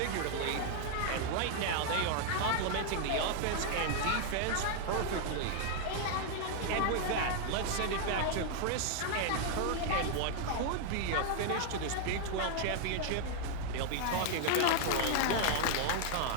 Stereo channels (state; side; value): different; both; correlation 0.00